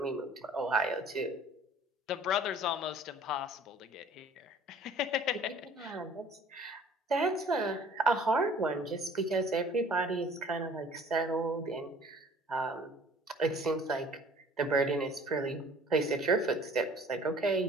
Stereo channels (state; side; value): normal; both; correlation 0.51